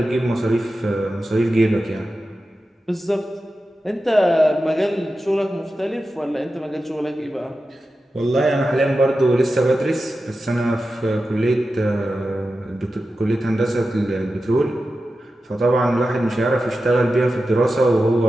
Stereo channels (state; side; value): normal; both; correlation 0.92